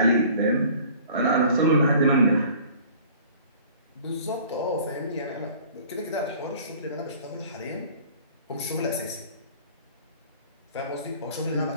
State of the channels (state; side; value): inverted; both; correlation -0.48